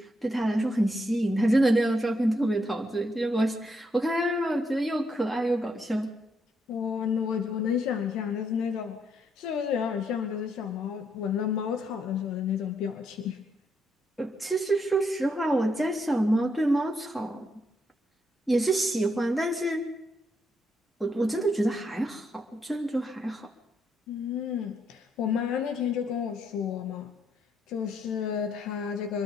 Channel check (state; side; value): normal; both; correlation 0.77